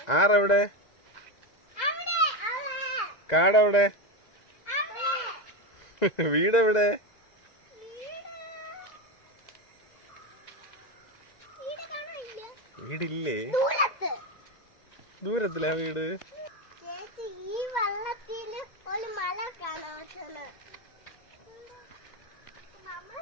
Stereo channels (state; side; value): late; right; 2.0 ms